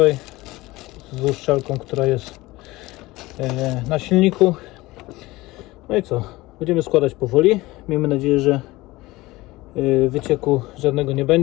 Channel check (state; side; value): quieter; right; 19.8 dB